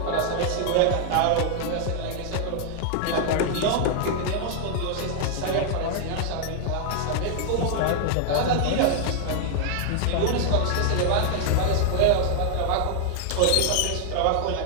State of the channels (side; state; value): both; different; correlation -0.01